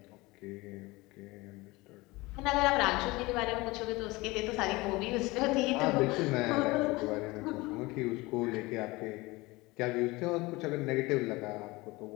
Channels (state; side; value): quieter; right; 22.1 dB